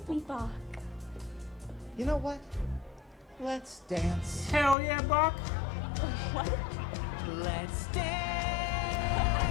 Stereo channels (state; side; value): drops out; right; at 4.8 s